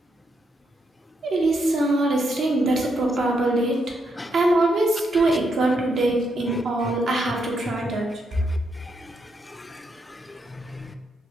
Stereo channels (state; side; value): normal; both; correlation 0.79